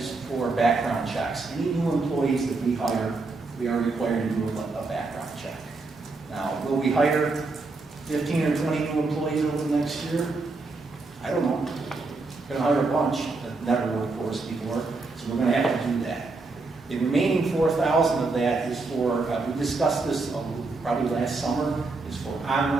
for background checks. Any new employees that we hire, we are required to do a background check. Now, will we hire 15 or 20 new employees over the next year? I don't know. We're gonna hire a bunch that never worked for us before, so we're gonna have to do that. The remaining 4,000 of that is for, we discussed this probably last summer, is for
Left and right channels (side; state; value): left; quieter; 3.7 dB